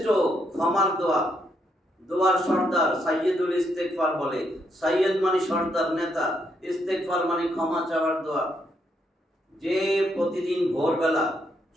ক্ষমার দোয়া, দোয়ার সর্দার সাইয়্যিদুল ইস্তিগফার বলে। সাইয়্যিদ মানে সর্দার, নেতা, ইস্তিগফার মানে ক্ষমা চাওয়ার দোয়া। যে প্রতিদিন ভোরবেলা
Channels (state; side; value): normal; both; correlation 0.76